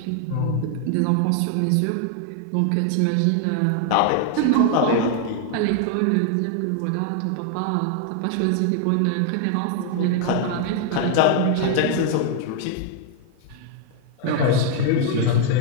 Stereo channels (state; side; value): different; both; correlation 0.00